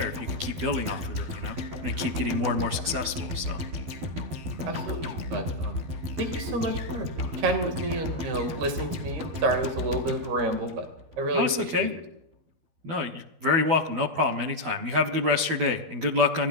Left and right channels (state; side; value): late; left; 12 ms